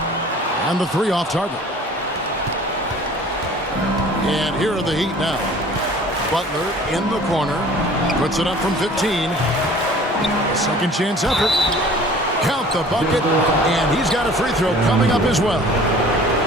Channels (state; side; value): normal; both; correlation 0.48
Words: And the 3 off target. And here are the Heat now. Butler in the corner. Puts it up from 15. Second chance effort. Count the bucket. And he's got a free throw coming up as well.